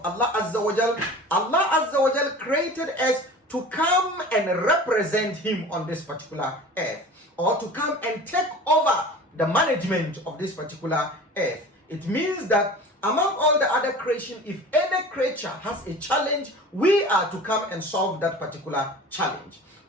Allah Azza wa Jal. Allah Azza wa Jal created us to come and represent him on this particular earth, or to come and take over the management of this particular earth. It means that among all the other creation, if any creature has a challenge, we are to come and solve that particular challenge.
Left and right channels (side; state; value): both; normal; correlation 0.39